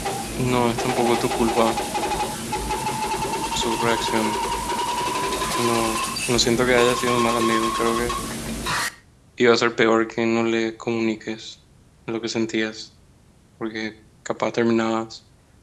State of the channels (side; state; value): both; identical; correlation 1.00